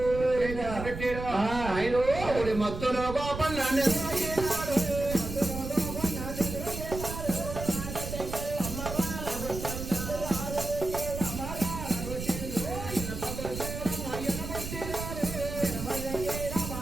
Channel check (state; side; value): noise; right; rumble, 7 dB below the sound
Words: పెట్టాడు ఆయన మత్తులో కోపం